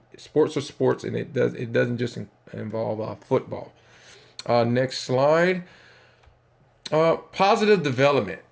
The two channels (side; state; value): both; identical; correlation 1.00